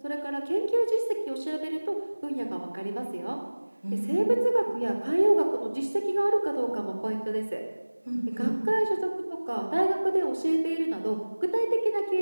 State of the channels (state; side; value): inverted; both; correlation -1.00